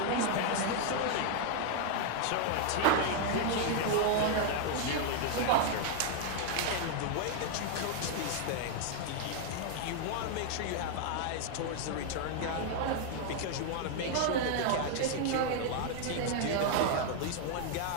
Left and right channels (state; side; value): different; both; correlation 0.00